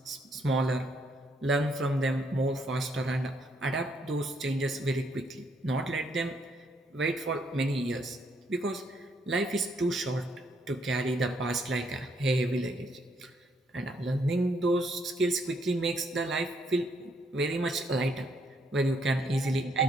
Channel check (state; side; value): normal; both; correlation 0.72